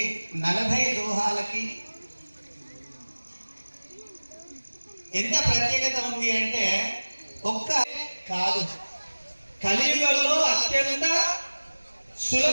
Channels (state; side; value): inverted; both; correlation -1.00